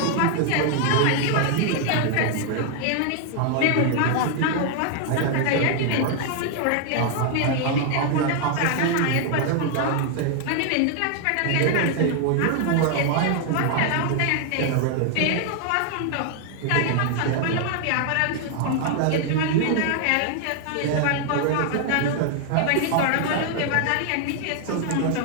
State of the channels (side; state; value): both; different; correlation 0.00